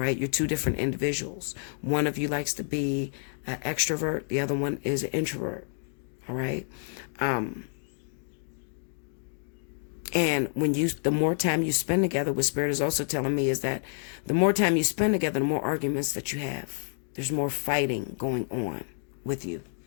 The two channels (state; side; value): silent; right; digital silence